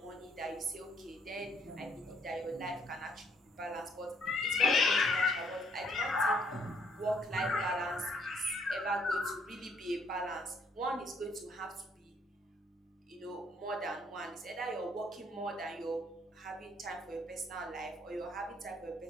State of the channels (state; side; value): normal; both; correlation 0.67